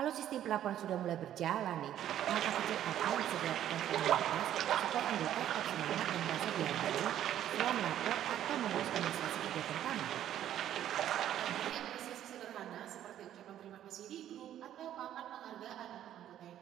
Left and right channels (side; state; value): left; quieter; 11.4 dB